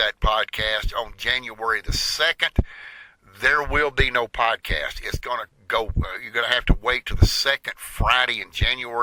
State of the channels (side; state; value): both; identical; correlation 1.00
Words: podcast, on January the 2nd, there will be no podcast. It's going to go, you're going to have to wait to the second Friday in